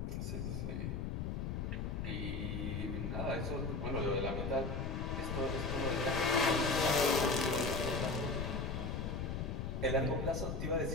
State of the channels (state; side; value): noise; left; rumble, 2 dB below the sound